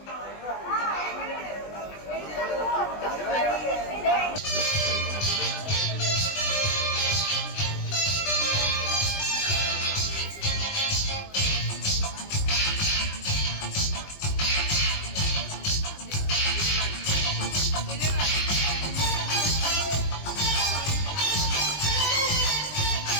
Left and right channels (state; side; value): late; right; 20 ms